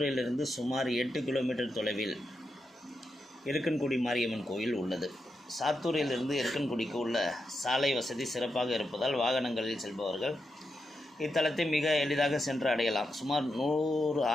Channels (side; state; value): both; normal; correlation 0.86